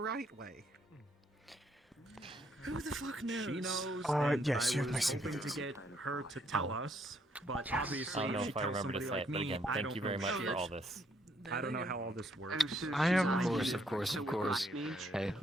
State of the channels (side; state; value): both; normal; correlation 0.70